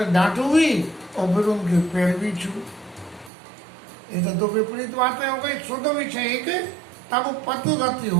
डांटू भी और फिर उनके पैर भी छू। ये तो दो विपरीत बातें हो गई। शुद्ध विषय एक, तब पद रति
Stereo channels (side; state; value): left; drops out; at 3.3 s